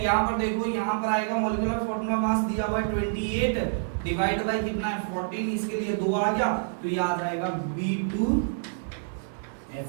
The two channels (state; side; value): silent; left; digital silence